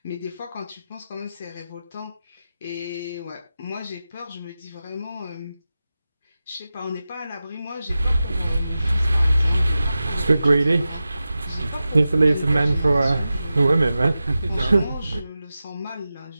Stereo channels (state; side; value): inverted; both; correlation -0.93